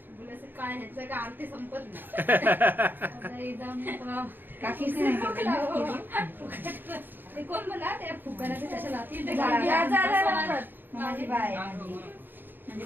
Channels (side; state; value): left; late; 0.094 ms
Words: काय ह्याचं का आरती संपत नाही. काकीच नाही केली. ते कोण म्हणा ते फुकायला ते कशाला माझी बाय माझी